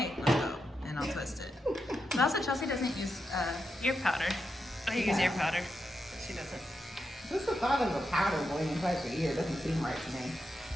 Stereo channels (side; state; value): both; normal; correlation 0.86